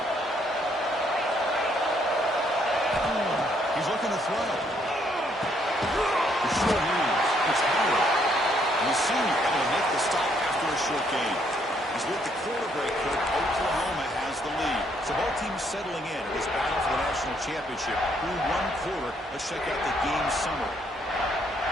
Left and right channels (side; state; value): both; normal; correlation 0.70